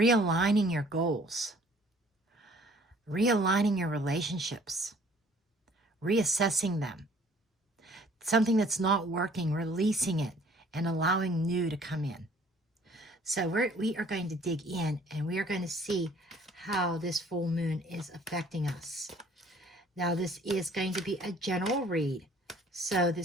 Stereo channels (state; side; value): normal; both; correlation 0.56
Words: your goals, realigning your relationships, reassessing them. Something that's not working, releasing it and allowing new to come in. So we are going to dig in and we are going to see how this full moon is affecting us. Now, this is going to be a general read, so